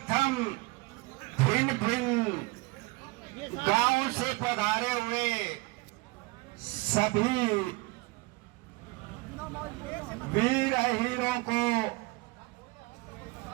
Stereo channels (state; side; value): quieter; left; 24.0 dB